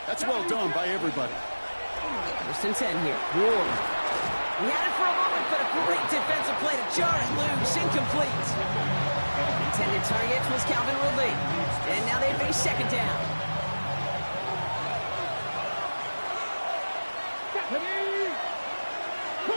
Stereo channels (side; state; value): both; inverted; correlation -1.00